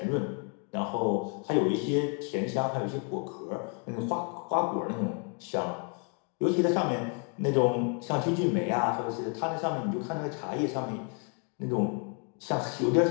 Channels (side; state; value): right; quieter; 38.5 dB